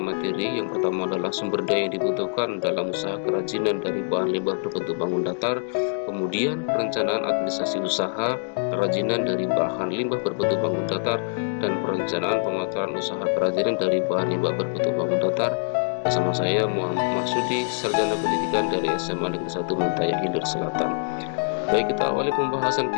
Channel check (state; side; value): silent; right; digital silence